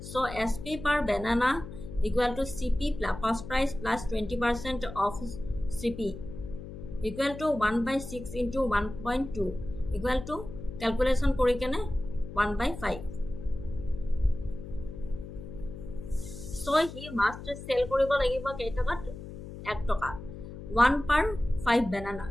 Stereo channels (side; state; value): left; noise; hum, 11 dB below the sound